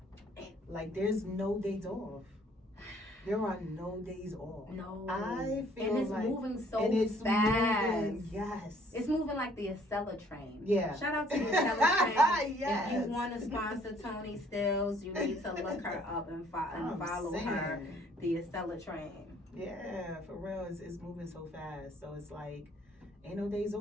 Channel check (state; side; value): normal; both; correlation 0.61